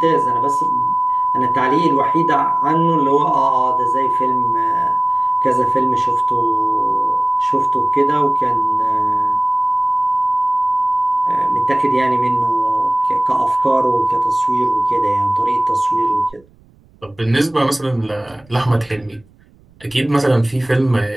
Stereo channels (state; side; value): noise; right; rumble, 30 dB below the sound